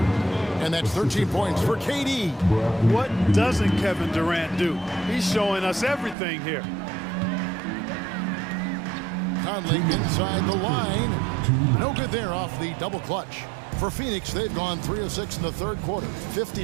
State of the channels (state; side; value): drops out; left; at 6.2 s